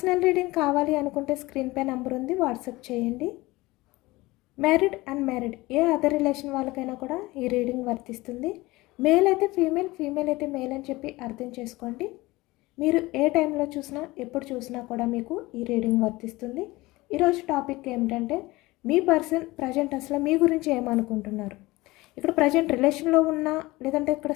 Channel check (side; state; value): right; quieter; 20.6 dB